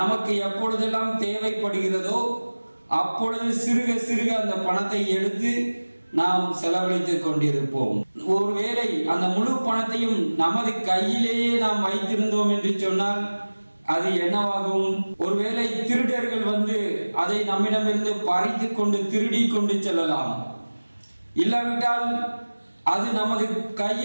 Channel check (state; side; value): inverted; both; correlation -1.00